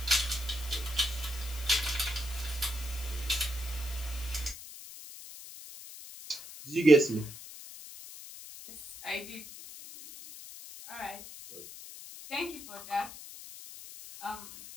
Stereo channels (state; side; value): noise; left; hiss, 13 dB below the sound